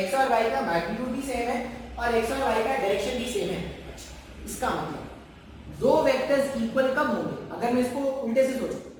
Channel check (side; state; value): both; identical; correlation 1.00